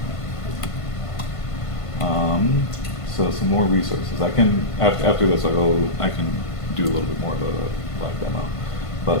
So some more resources. I can after this I can do a little bit more of a live demo.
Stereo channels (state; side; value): late; right; 1.5 ms